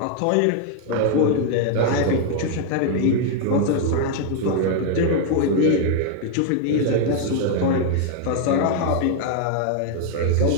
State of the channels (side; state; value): both; different; correlation 0.00